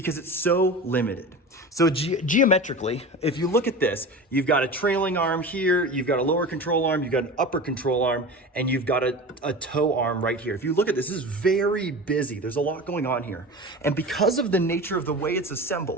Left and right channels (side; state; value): both; normal; correlation 0.31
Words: it's so limited. So geometrically, if you look at this, you've got a trailing arm here, you've got a lower control arm, you've got an upper control arm, and you've got a toe arm right here. If you look at this is very busy. There's a lot going on here. And because of the nature of the way it's